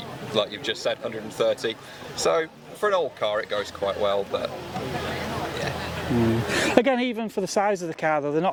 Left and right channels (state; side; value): identical; both; correlation 1.00